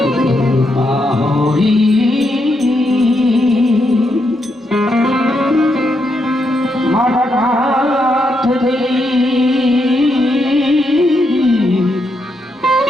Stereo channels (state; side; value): normal; both; correlation 0.81